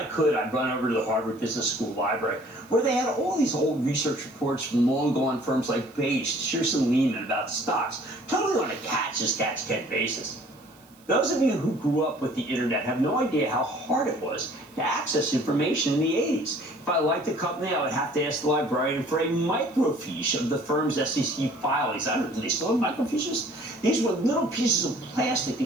could, I'd run over to the Harvard Business School library, where they had all these old research reports from long-gone firms like Bates, Shearson Lehman about stocks, totally on a catch-as-catch-can basis. Those of you who grew up with the internet have no idea how hard it was to access information in the 80s. If I liked a company, I would have to ask the librarian for a microfiche of the firm's SEC filings. I don't know, do they still have microfiches? These were little pieces of plastic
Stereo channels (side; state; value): right; noise; hiss, 29 dB below the sound